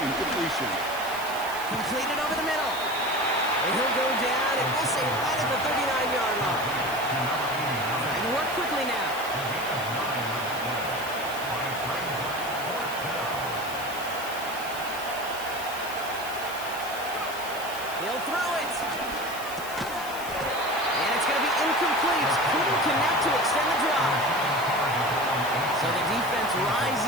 incompletion. Completed over the middle. And he'll go down, and we'll say right at the 39-yard line. Trying to work quickly now. He'll throw it. And it's going to be incomplete. Couldn't connect to extend the drive. So the defense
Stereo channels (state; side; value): noise; right; hiss, 13 dB below the sound